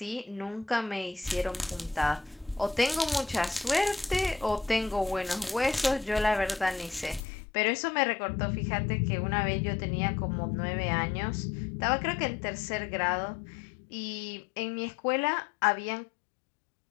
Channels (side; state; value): right; drops out; at 7.2 s